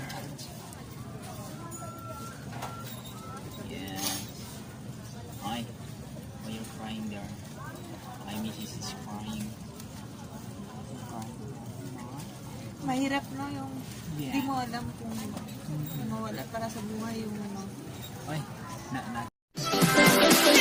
challenge. Yeah. Ay, why you're crying there? My missus is crying. Mahirap no yung Yeah. di mo alam kung mawala para sa buhay yung ano. Ay, na.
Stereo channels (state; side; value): identical; both; correlation 1.00